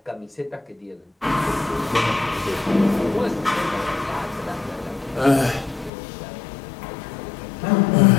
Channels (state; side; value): drops out; right; at 5.9 s